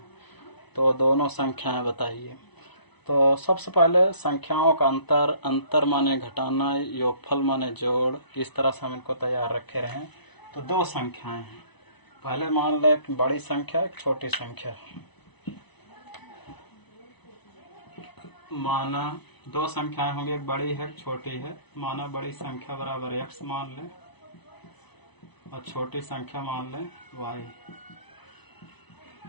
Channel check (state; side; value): late; right; 1.0 ms